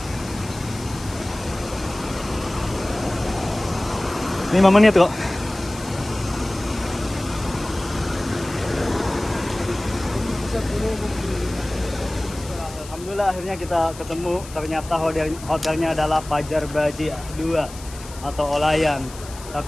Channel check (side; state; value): left; noise; hiss, 16 dB below the sound